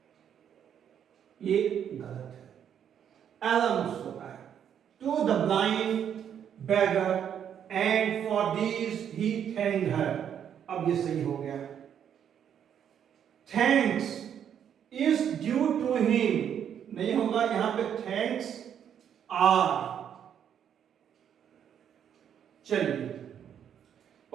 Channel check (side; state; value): left; quieter; 8.9 dB